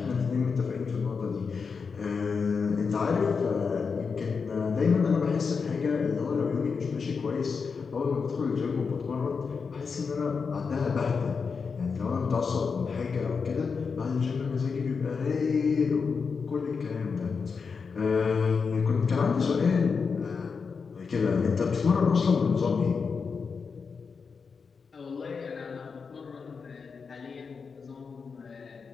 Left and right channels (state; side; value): quieter; right; 5.4 dB